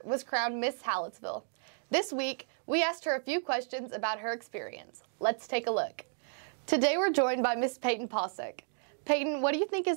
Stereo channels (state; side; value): silent; left; digital silence